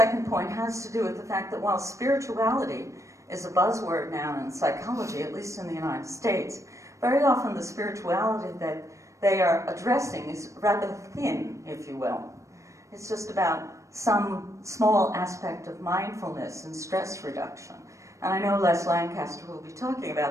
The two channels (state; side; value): late; left; 0.15 ms